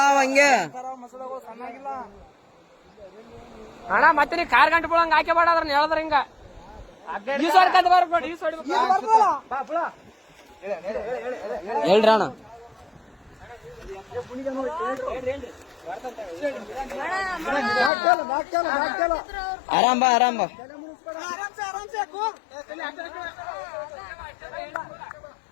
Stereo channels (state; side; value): drops out; right; at 17.9 s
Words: ಹಂಗೆ ಅಣ್ಣ. ಮತ್ತೆ ನೀ ಕಾರ್ ಗಂಟೆ ಬಿಡಂಗ ಹಾಕಿ ಬಾಡ್ರ ಹೇಳಿದ್ರ ಹಿಂಗ ಹೇಳ್ರಿ ಅಣ್ಣ. ಆರಾಮ್ ಬಾ, ಆರಾಮ್ ಬಾ.